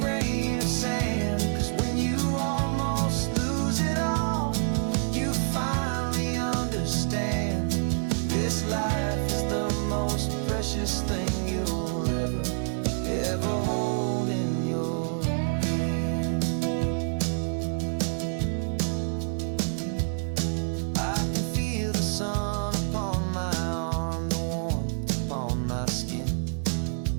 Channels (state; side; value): silent; left; 59 dB below the other